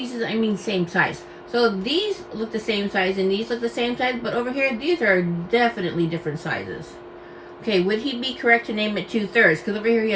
I mean same size. So these look the same size and these look the same size, but over here, these are definitely different sizes. Okay, would he be correct to name it 2/3? Because over here he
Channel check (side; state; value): both; identical; correlation 1.00